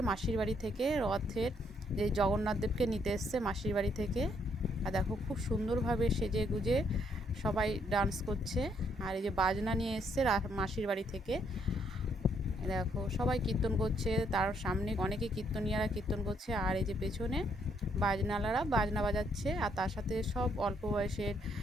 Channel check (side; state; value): both; normal; correlation 0.71